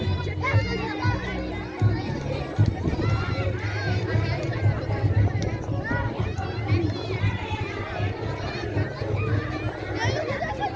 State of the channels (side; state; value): both; identical; correlation 1.00